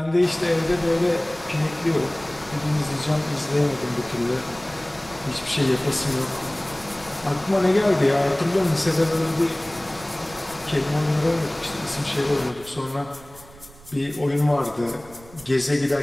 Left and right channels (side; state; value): right; noise; rumble, 21 dB below the sound